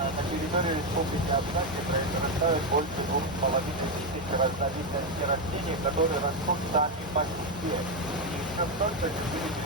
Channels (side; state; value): both; normal; correlation 0.07